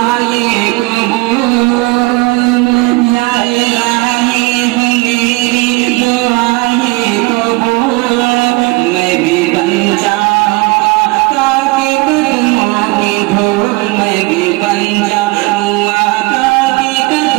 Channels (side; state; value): left; quieter; 24.2 dB